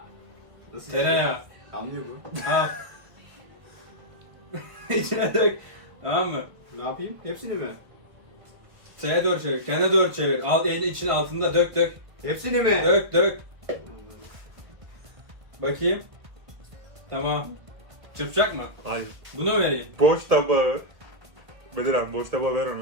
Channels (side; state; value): left; late; 1.5 ms